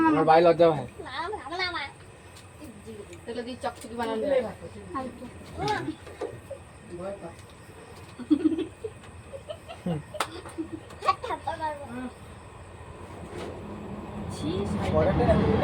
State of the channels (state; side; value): identical; both; correlation 1.00